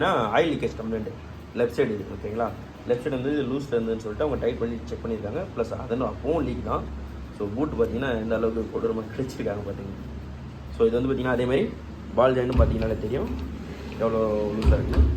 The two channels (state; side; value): identical; both; correlation 1.00